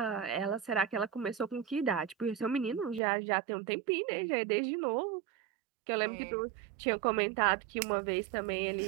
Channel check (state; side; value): drops out; left; at 3.0 s